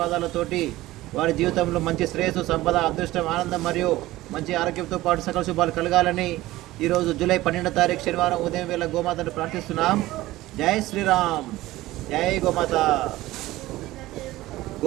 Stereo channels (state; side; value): quieter; left; 17.2 dB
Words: వారి జీవితంలో మంచి శ్రేయస్సు, సంపద, అదృష్టం, ఆనందం మరియు మంచి ఆరోగ్యంతో పాటు సకల శుభాలు కలగాలని ఈరోజు జూలై 12 తారీఖు శనివారం ఉదయం వేళ గోమాతను ప్రార్థిస్తున్నాం. జై శ్రీరామ్, జై గోమాత.